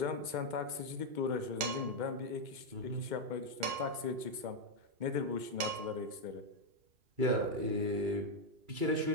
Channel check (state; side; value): late; left; 2.2 ms